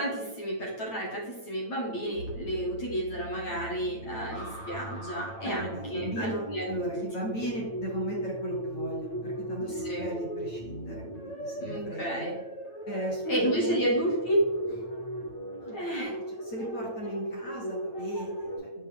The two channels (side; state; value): right; late; 8.9 ms